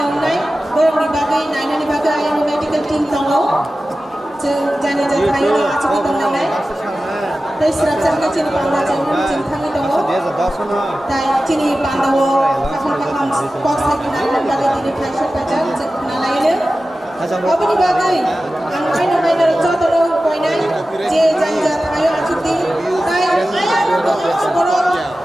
nai borong di bagai naina ni bagai ayam medical team tongo jeng jani ja thai na achu ki dong nai tai srap jang chini panda jang jing thangi tongo tai chini panda wo kakam box hai kina nan bagai dini phai ka jang jeng na laile abani bagai ang kaina kaina joto no koinai je jang ja thayo achuti tai ayam to boro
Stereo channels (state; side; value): normal; both; correlation 0.94